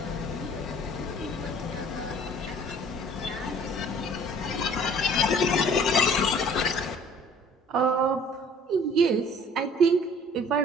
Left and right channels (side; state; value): both; normal; correlation 0.52